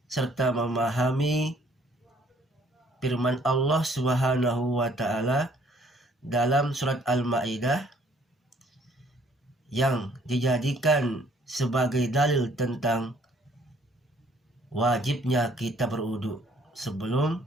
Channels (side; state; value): both; normal; correlation 0.61